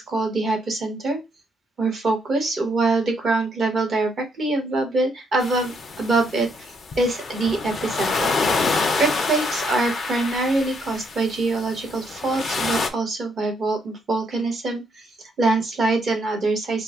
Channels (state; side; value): normal; both; correlation 0.74